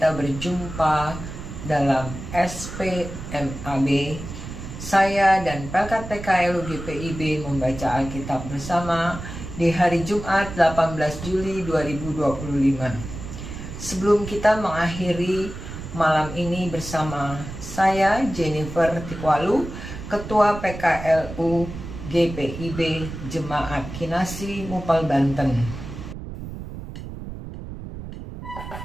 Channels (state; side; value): noise; right; rumble, 10 dB below the sound